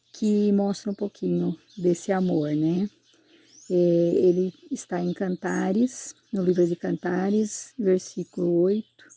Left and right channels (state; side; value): identical; both; correlation 1.00